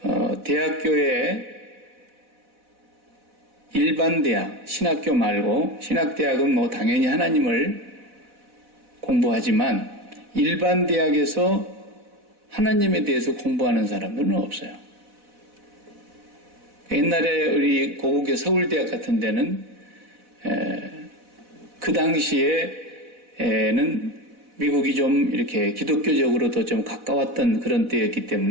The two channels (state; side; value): late; left; 4.1 ms